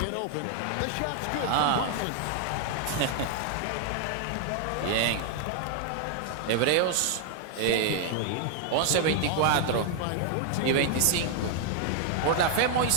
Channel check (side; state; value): both; different; correlation 0.00